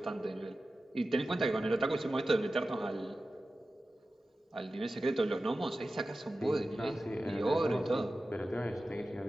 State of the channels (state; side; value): normal; both; correlation 0.94